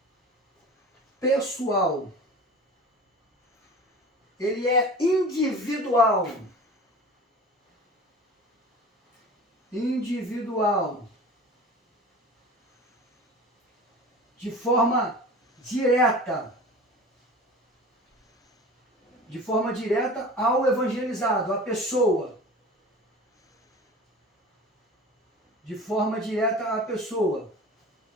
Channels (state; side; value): normal; both; correlation 0.38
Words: ele é individual. Individual. De forma direta. De forma direta ao evangelizado, à pessoa. De forma direta à pessoa.